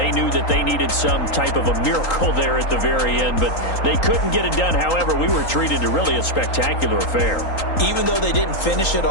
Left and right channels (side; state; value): right; late; 3.8 ms